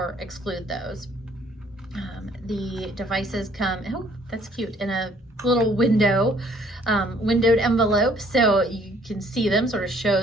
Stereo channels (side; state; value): both; normal; correlation 0.61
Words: exclude those. The devices come, oh, that's cute, in a little windowed envelope, so you can see them, sort of